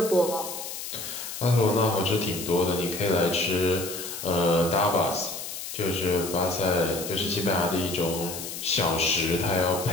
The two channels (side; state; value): left; noise; hiss, 8 dB below the sound